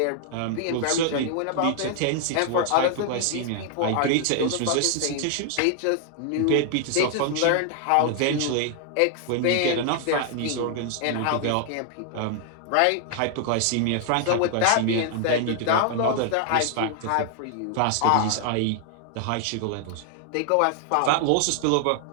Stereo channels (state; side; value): different; both; correlation 0.00